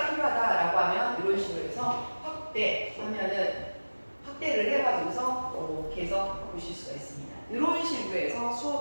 필요하다라고 하면 이런 식으로 해서 확대를 해가지고서 이렇게 해서 보실 수가 있습니다. 이런 식으로 해서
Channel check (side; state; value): both; inverted; correlation -1.00